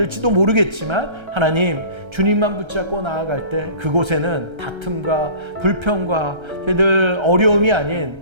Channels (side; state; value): left; late; 1.3 ms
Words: 모르겠지만 하나님, 주님만 붙잡고 나아갈 때 그곳에는 다툼과 불평과 저희들 어려움이 아닌